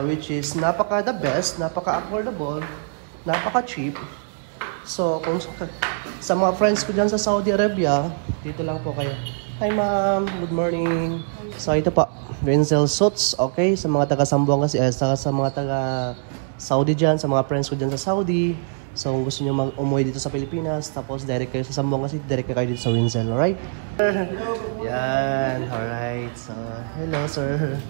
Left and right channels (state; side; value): silent; left; digital silence